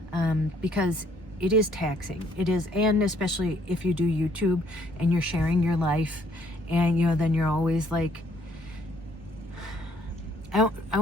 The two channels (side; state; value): both; normal; correlation 0.65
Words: because it is taxing. It is, and especially if you do YouTube and you're sharing your life, and you know, then you're always like, I